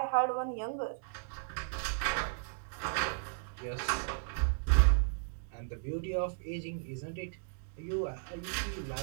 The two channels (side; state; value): left; silent; digital silence